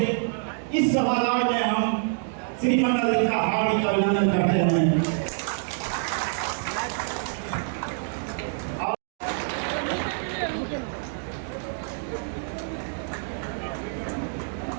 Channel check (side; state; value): left; silent; digital silence